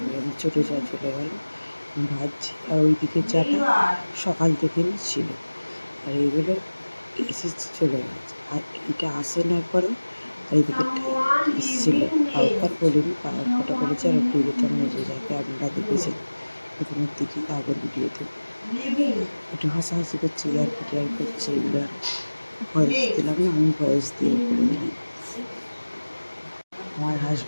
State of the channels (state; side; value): inverted; both; correlation -1.00